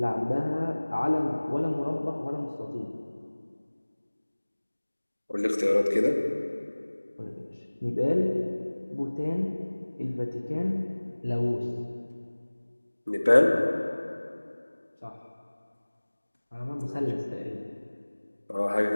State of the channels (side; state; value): both; inverted; correlation -1.00